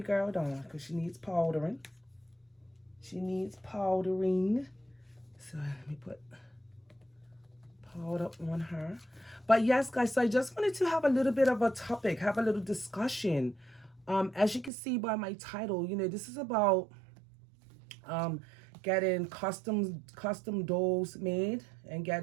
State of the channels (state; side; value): drops out; left; at 14.7 s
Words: girl Dawn, because she needs powdering. She needs powdering. So let me put powder on her. But yes, guys, so I just wanted to have a little bit of a topic, have a little discussion As you can see by my title, this is about um, getting custom dolls made and